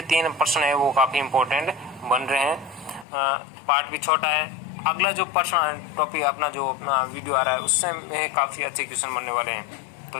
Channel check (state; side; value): drops out; right; at 3.1 s